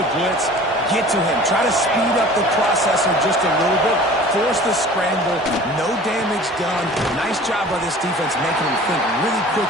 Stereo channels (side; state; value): both; normal; correlation 0.44